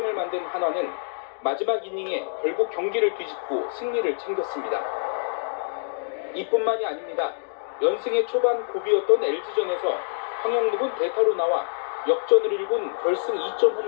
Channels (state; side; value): silent; right; digital silence